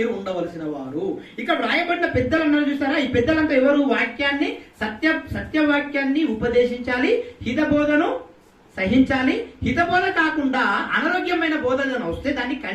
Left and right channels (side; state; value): both; identical; correlation 1.00